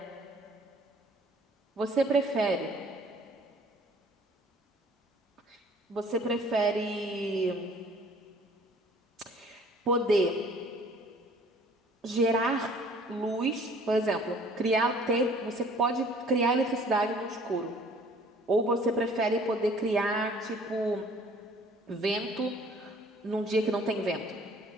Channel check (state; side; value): normal; both; correlation 0.54